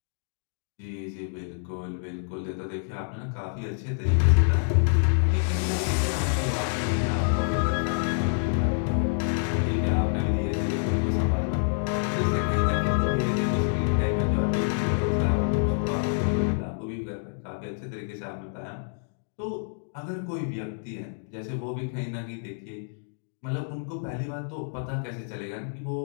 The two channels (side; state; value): right; silent; digital silence